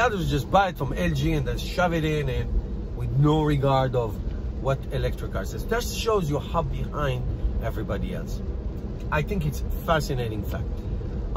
others, just buy it from LG and then shove it in, and with no regard of what electric cars is. That shows you how behind everybody else. I think it's a fascinating fact.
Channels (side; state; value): both; identical; correlation 1.00